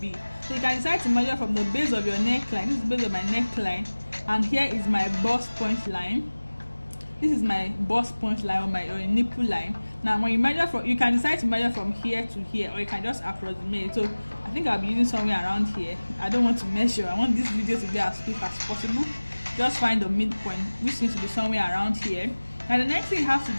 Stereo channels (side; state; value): both; inverted; correlation -1.00